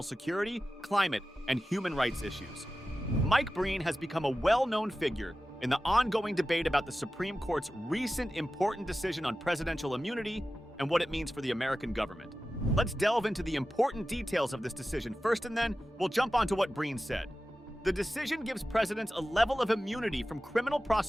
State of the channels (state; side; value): normal; both; correlation 0.94